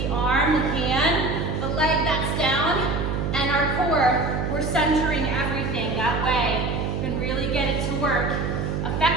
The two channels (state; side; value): noise; right; hum, 1 dB below the sound